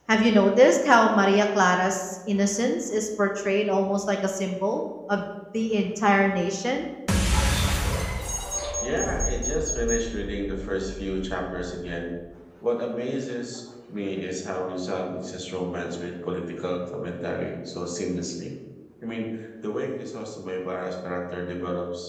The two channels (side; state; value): both; identical; correlation 1.00